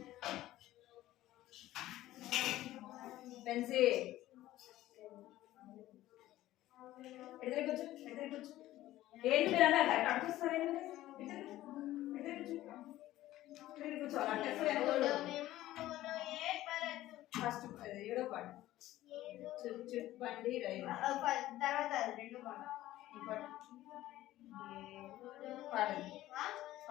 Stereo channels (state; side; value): quieter; right; 15.2 dB